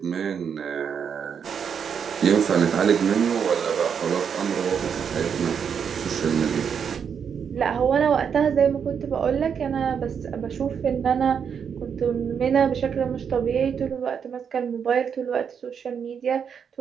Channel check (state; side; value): quieter; left; 7.2 dB